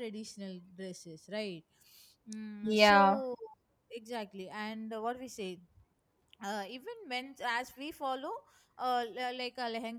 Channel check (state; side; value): identical; both; correlation 1.00